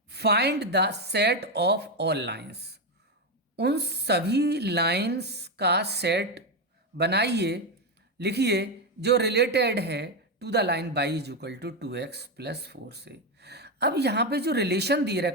find the set of all lines. उन सभी लाइंस का सेट बनाइए, लिखिए जो रिलेटेड है to the line y is equal to 2x plus 4 से. अब यहाँ पे जो रिलेशन दे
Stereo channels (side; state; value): both; normal; correlation 0.09